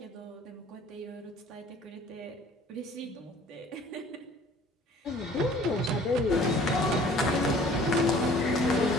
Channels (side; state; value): both; normal; correlation 0.52